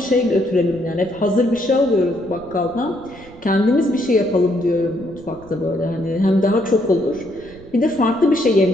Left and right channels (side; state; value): right; noise; rumble, 22 dB below the sound